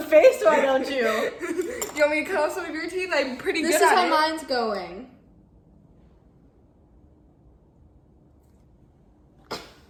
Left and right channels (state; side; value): identical; both; correlation 1.00